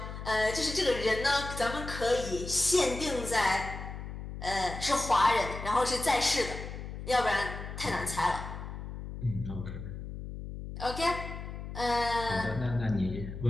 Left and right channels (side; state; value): left; noise; hum, 8 dB below the sound